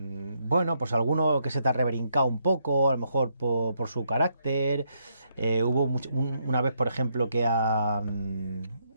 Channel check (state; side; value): inverted; both; correlation -0.76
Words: pues alguno que se te ha rebrincado un poco, a lo mejor por su carácter. Hubo una vez, por ejemplo, que al